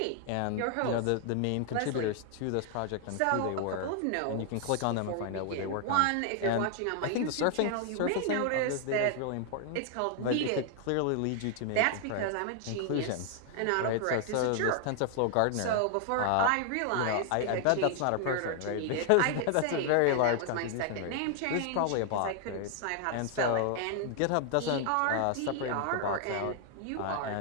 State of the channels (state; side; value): different; both; correlation 0.00